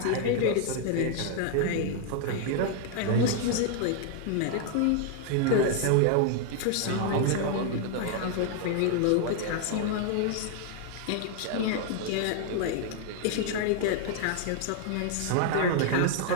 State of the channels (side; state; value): both; different; correlation 0.00